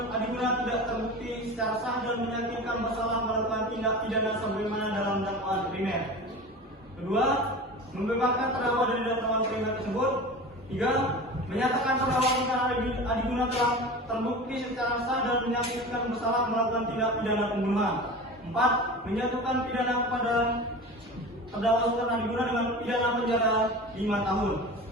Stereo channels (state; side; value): normal; both; correlation 0.33